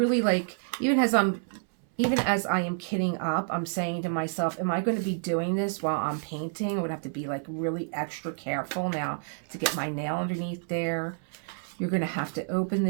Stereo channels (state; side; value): silent; left; 59 dB below the other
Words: like, even as I am kitting up, I'm saying to myself, am I going to be doing this while I'm painting? I would have to be like really extra careful now to get my nail underneath there. You're going to have to open